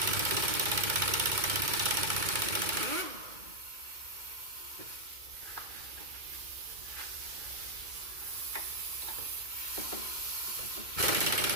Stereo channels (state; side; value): late; left; 2.2 ms